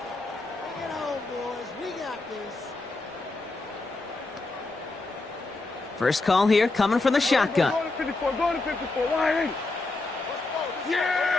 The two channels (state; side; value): quieter; right; 3.2 dB